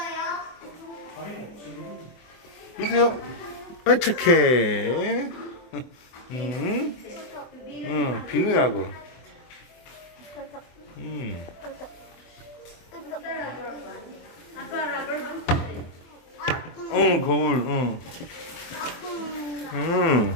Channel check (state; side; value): late; right; 24 ms